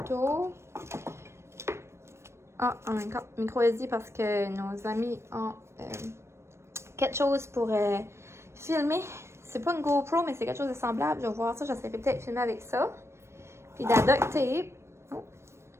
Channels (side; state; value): left; late; 0.13 ms